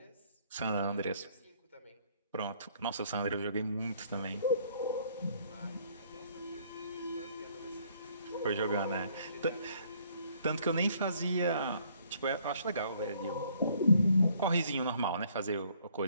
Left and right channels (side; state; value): both; inverted; correlation -0.63